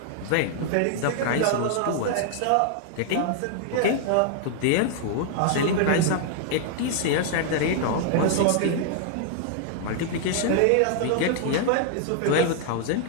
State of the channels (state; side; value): different; both; correlation 0.00